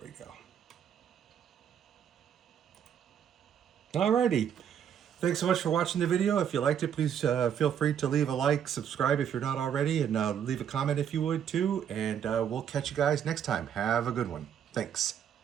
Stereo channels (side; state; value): left; quieter; 8.8 dB